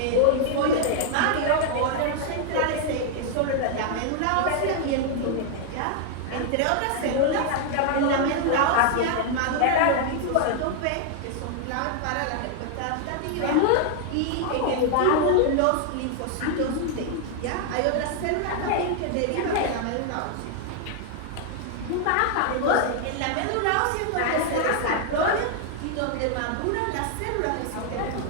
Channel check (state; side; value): different; both; correlation 0.00